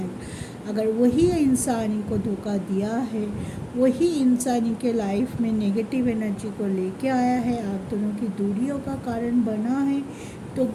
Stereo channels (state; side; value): identical; both; correlation 1.00